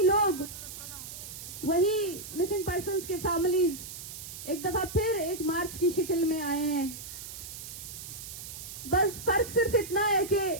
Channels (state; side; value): noise; right; hiss, 11 dB below the sound